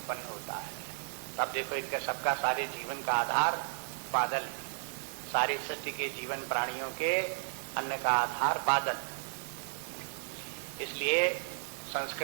होता है। तब देखो इनका सबका सारे जीवन का आधार बादल है। सारी सृष्टि के जीवन प्राणियों के अन्न का आधार बादल। इसलिए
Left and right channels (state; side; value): silent; left; digital silence